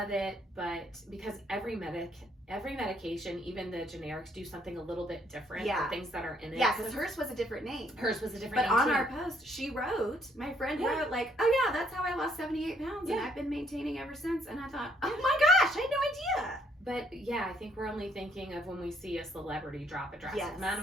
it, but because every medication, even the generics, do something a little bit different. Yeah. The things that are in it. Yeah, because hers was a different name. Hers was a different name. name. But on our post, my friend wrote like, oh yeah, that's how I lost 78 pounds, and I've been maintaining ever since. And I thought, oh my gosh, I had no idea. But yeah, I think we're only thinking of when we see a celebrity drop a drastic amount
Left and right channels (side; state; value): both; normal; correlation 0.68